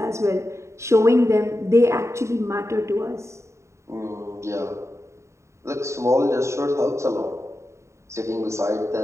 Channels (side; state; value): left; late; 0.14 ms